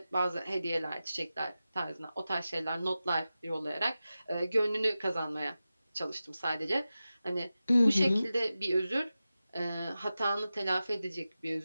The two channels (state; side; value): inverted; both; correlation -0.94